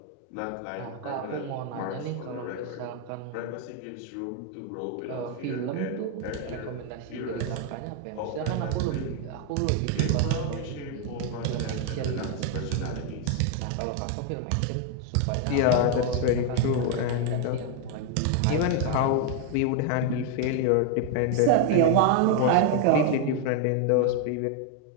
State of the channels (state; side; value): different; both; correlation 0.01